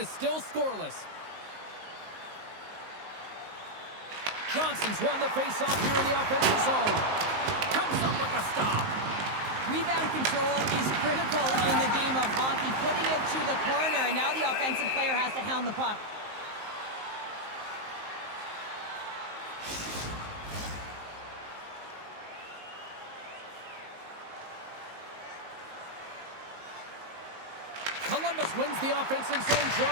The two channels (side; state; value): left; late; 19 ms